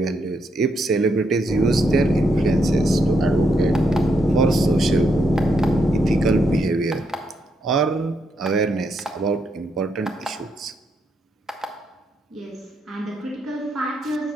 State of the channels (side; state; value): both; normal; correlation 0.79